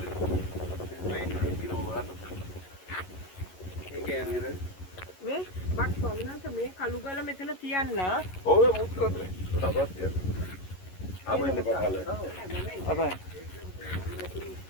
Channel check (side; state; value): right; late; 11 ms